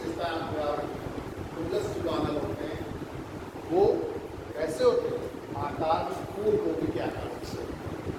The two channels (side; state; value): both; identical; correlation 1.00